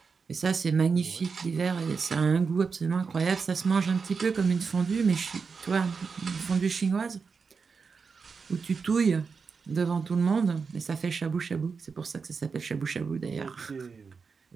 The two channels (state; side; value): quieter; left; 5.2 dB